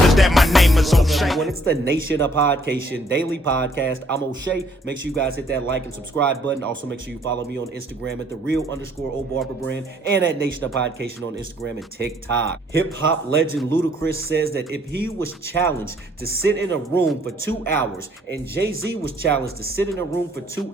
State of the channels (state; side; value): normal; both; correlation 0.64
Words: that my name is O'Shea. When it's the Nation of Podcation daily podcast, I'm O'Shea. Make sure you guys hit that like and subscribe button. Also, make sure you follow me on Instagram at @thereal_OBarberbrand and at Nation of Podcation on Instagram and TikTok. Hip hop legend Ludacris says that if he was challenged to sit in a room for 2 hours and Jay-Z was challenged to sit in a room for 2